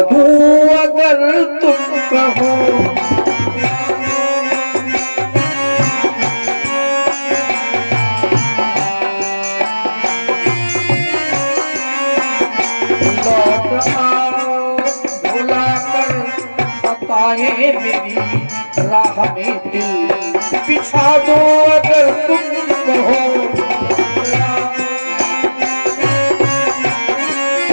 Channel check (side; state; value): both; inverted; correlation -1.00